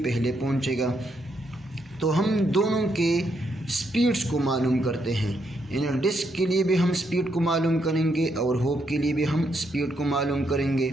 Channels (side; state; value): both; normal; correlation 0.77